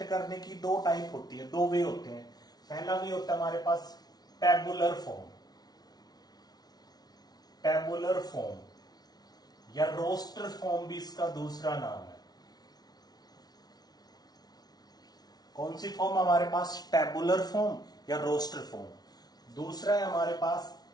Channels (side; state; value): right; late; 0.19 ms